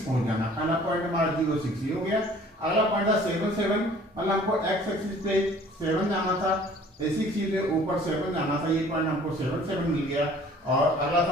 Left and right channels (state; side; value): normal; both; correlation 0.52